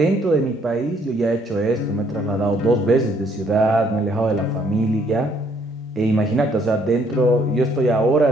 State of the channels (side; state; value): both; normal; correlation 0.66